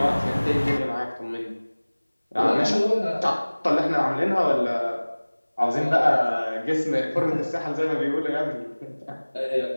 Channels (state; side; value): inverted; both; correlation -1.00